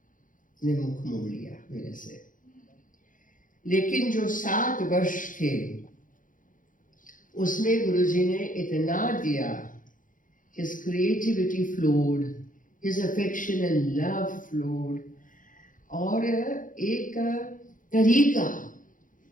ने मुख मोड़ लिया मेरे से। लेकिन जो 7 वर्ष थे उसमें गुरुजी ने इतना दिया, his creativity flowed, his affection and love flowed, और एक तरीका,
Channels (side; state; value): right; late; 0.39 ms